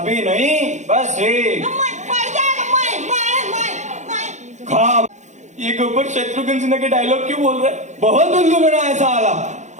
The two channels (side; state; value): left; late; 0.34 ms